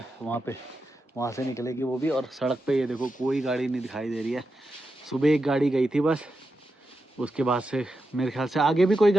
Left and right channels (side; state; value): both; normal; correlation 0.88